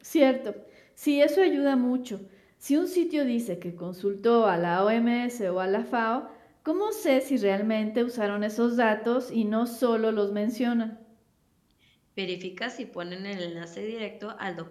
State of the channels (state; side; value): identical; both; correlation 1.00